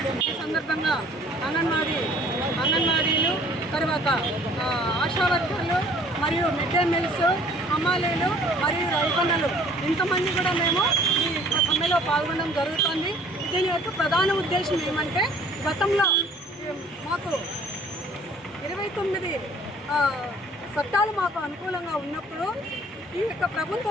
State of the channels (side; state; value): both; normal; correlation 0.55